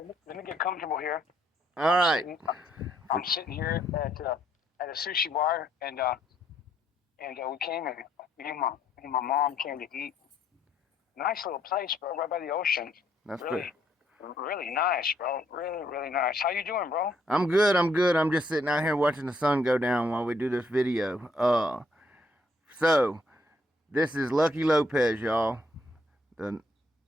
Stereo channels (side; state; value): both; normal; correlation 0.70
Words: Let me get comfortable here. All right. I'm sitting here at a sushi bar, and we came and me and my mom came to eat. Nice little place, bro, right by the ocean. That's really, good. really nice, bro. Really, really nice. How you doing, bro? I'm good. I'm just sitting out here watching the sun go down while we do this video. So this is Lucky Lopez, y'all. The